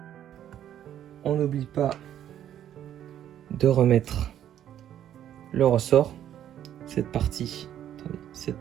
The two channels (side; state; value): left; quieter; 10.8 dB